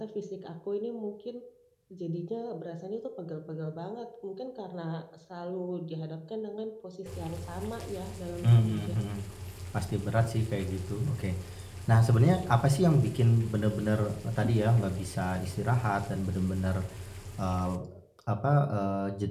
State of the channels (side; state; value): both; identical; correlation 1.00